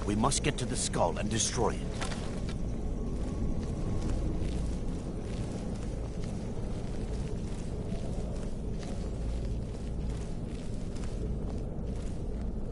We must get to the skull and destroy it.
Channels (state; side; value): identical; both; correlation 1.00